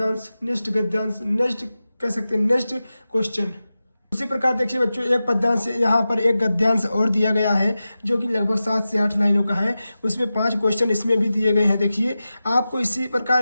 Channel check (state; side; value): inverted; both; correlation -0.94